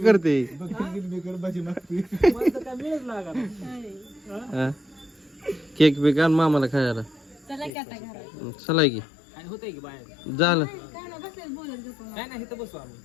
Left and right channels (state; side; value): drops out; right; at 7.7 s